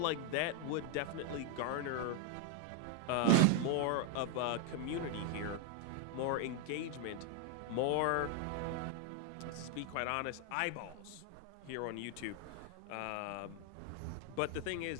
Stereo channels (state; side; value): different; both; correlation 0.00